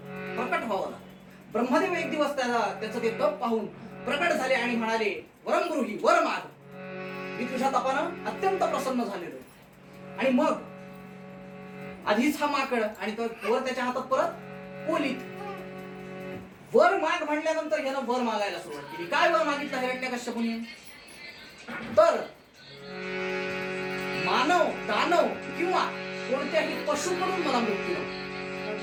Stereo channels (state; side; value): identical; both; correlation 1.00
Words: व्हावं लागलं. ब्रह्मदेव एक दिवस त्याचं ते तप पाहून प्रकट झाले आणि म्हणाले, वरम गृही, वर माग, मी तुझ्या तपानं अत्यंत प्रसन्न झालेलो. आणि मग आधीच हा माकड आणि तो वर त्याच्या हातात परत पोलीत. वर माग म्हणल्यानंतर ह्यानं वर मागायला सुरुवात केली. काय वर मागितलं हिरण्यकश्यपूने तर मानव, दानव किंवा कोणत्याही पशुकडून मला मृत्यू नको.